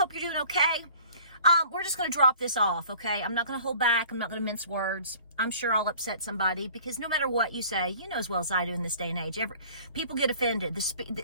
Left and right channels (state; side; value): inverted; both; correlation -0.50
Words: you're doing okay. We're just going to drop this off, okay? I'm not going to hold back. I'm not going to mince words. I'm sure I'll upset somebody because no matter what you say, you know as well as I do in this day and age, people get offended.